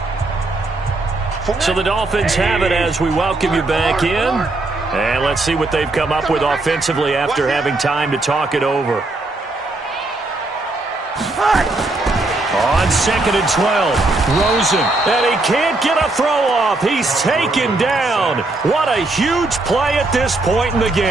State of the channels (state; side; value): quieter; left; 3.0 dB